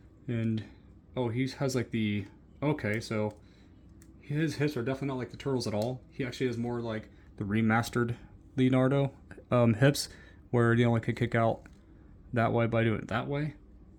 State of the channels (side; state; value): both; identical; correlation 1.00